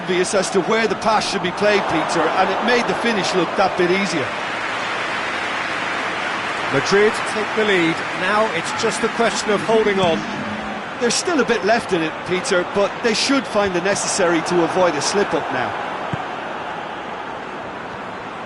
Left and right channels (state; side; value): identical; both; correlation 1.00